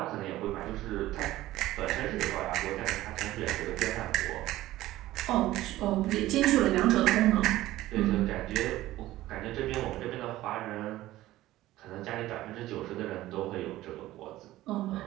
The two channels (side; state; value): left; quieter; 15.9 dB